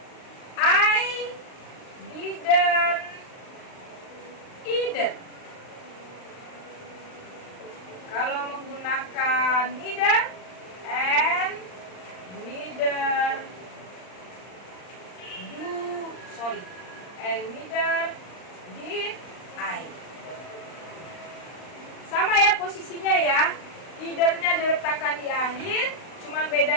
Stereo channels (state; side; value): late; right; 39 ms